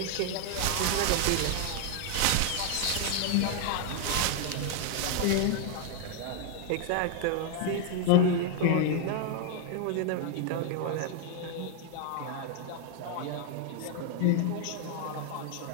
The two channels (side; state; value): both; different; correlation 0.00